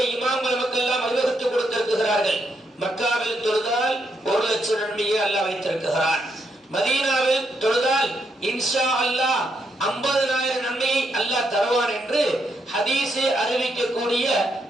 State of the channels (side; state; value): both; normal; correlation 0.78